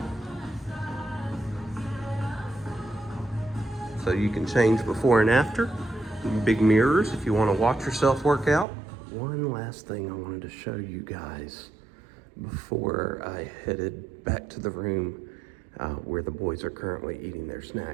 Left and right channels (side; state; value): left; drops out; at 8.7 s